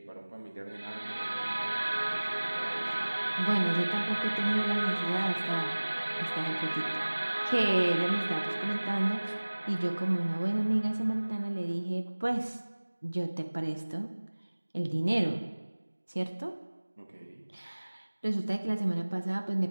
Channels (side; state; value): both; inverted; correlation -1.00